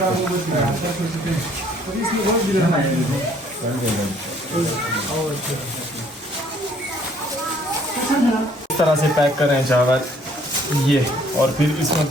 इस तरह से पैक कर रहे हैं चावल ये, और फिर इसमें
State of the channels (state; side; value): normal; both; correlation 0.61